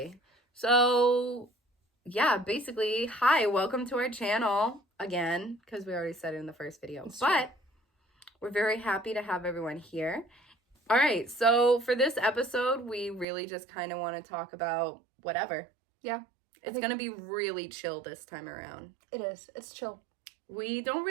So, yeah, basically, hi, welcome to our channel again, because we already said it in the first video. But we're very happy to have everyone here. All right, so for this episode, we really just kind of want to talk about whatever. Yeah. It's going to be really chill this time around. It is. It's chill. We don't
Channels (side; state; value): left; drops out; at 13.2 s